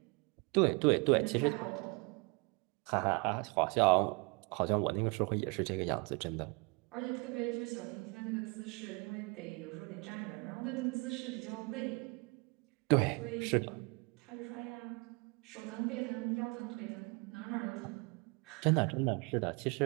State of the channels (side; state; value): left; quieter; 31.1 dB